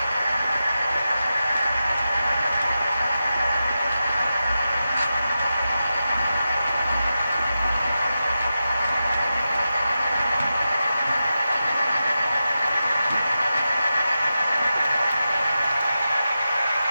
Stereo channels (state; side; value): inverted; both; correlation -0.91